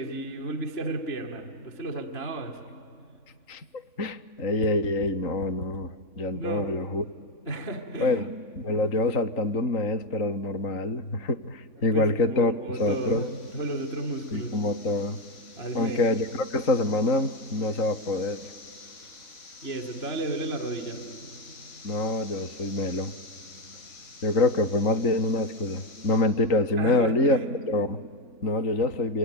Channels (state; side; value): late; right; 3.8 ms